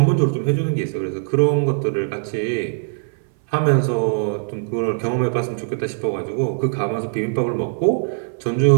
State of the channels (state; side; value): silent; left; 60 dB below the other